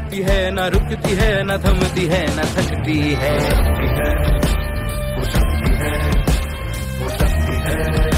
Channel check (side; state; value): both; identical; correlation 1.00